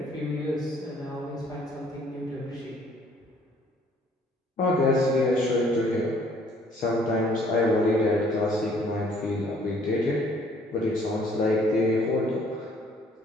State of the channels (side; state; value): both; normal; correlation 0.61